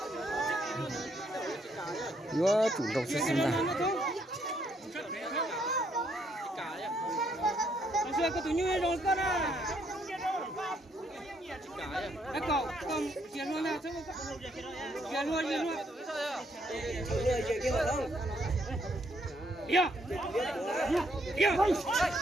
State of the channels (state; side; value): normal; both; correlation 0.71